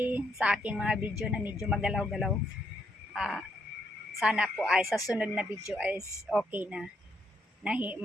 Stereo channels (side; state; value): both; normal; correlation 0.76